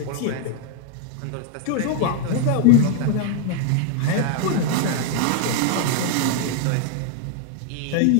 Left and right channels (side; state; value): both; different; correlation 0.00